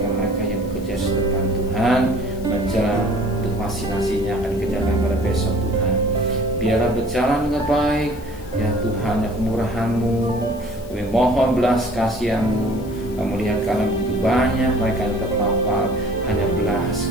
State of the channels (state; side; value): noise; left; hiss, 23 dB below the sound